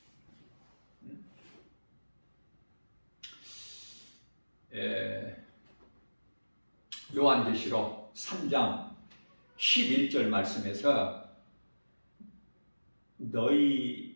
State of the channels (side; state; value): both; inverted; correlation -1.00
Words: 요한계시록 3장 11절 말씀에서 너희에게